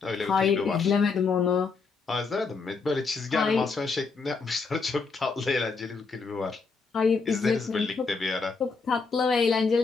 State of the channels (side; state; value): right; quieter; 4.7 dB